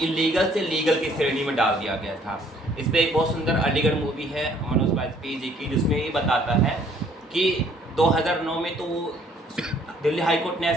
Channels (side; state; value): both; normal; correlation 0.61